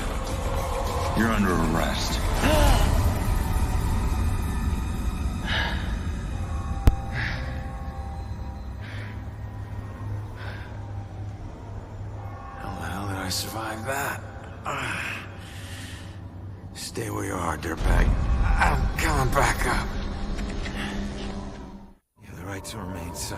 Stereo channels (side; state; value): both; identical; correlation 1.00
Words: You're under arrest. How the hell did I survive that? Stay where you are, dirtbag. I'm coming back up. You have the right to remain